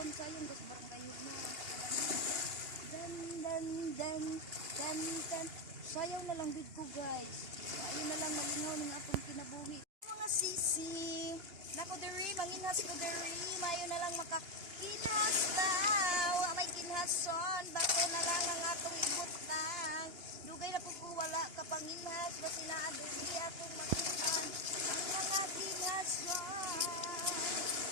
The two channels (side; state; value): left; late; 2.9 ms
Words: sa'yo, guys, barang kayo na. Dan. Sayaw na lang dito, guys. Sayaw na lang malingaw ng akong kinabuhi. Mga sisi, nako diri, manginhas ko diri, mayo na lang makakinhas daw. May kinhason, bato na lang ang atong ibutang. Dugay na po ko wala kapanginhas, basi na diri akong makihan ang mga kinhason.